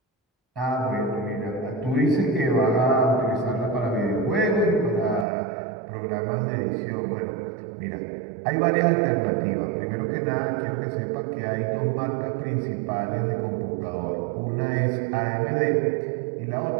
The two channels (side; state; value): left; drops out; at 5.2 s